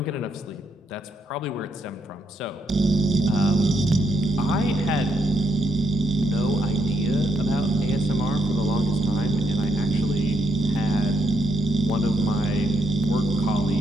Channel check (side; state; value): both; normal; correlation 0.76